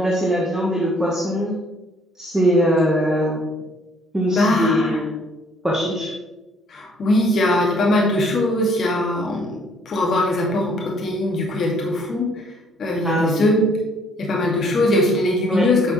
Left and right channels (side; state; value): both; normal; correlation 0.62